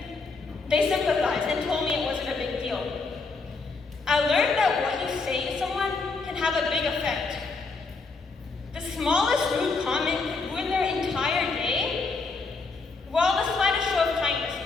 they sympathized and told me it wasn't a big deal. I learned that what you say to someone can have a big effect. The smallest rude comment could ruin their entire day, while the slightest show of kindness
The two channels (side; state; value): right; quieter; 4.1 dB